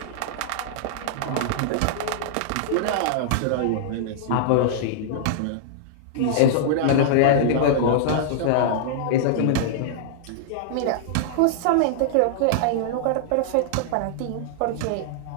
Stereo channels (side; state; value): both; different; correlation -0.01